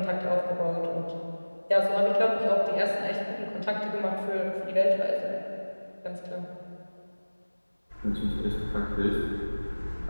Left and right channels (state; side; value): inverted; both; correlation -1.00